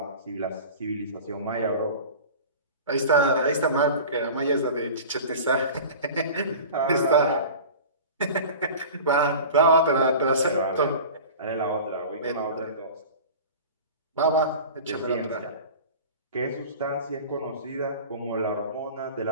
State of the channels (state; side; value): inverted; both; correlation -0.37